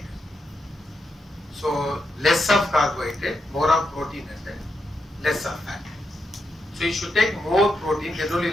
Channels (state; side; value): normal; both; correlation 0.84